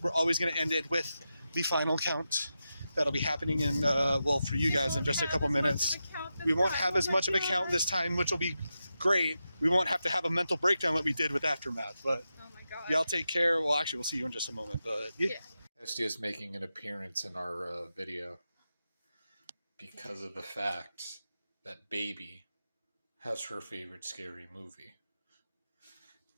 we're always going to end it with the final count. That'll be happening in, for you guys in just a couple minutes. We won't have as much of a count this time, which will be great. We won't have to have a mental breakdown like we did with Aftermath, but y'all take care. Well, actually, we'll see you in just a moment, but yeah. Esty is making an appearance in our video because of the fact that Baby has her favorite scary movie,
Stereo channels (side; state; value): both; inverted; correlation -0.89